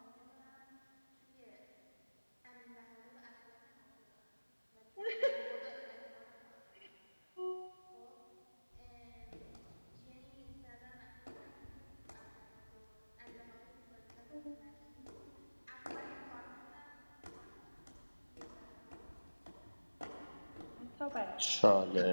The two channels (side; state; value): both; inverted; correlation -1.00